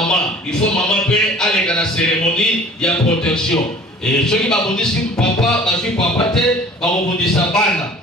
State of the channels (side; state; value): both; normal; correlation 0.48